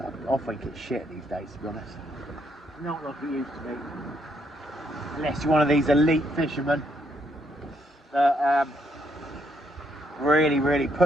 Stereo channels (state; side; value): normal; both; correlation 0.74